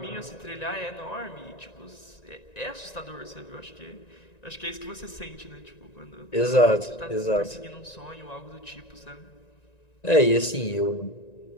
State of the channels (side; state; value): right; late; 1.9 ms